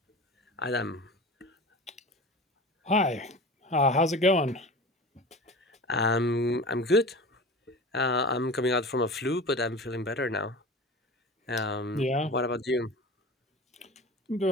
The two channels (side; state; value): both; normal; correlation 0.35